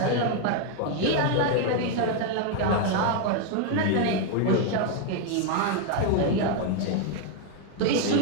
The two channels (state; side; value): different; both; correlation 0.01